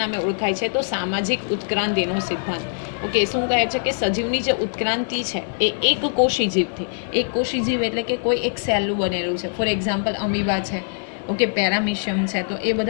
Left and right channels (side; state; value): right; silent; digital silence